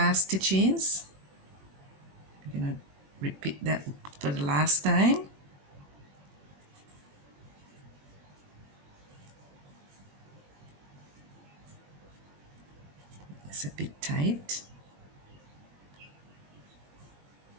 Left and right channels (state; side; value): late; left; 21 ms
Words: stitches. We're going to repeat that for the last time. It's a bit tight.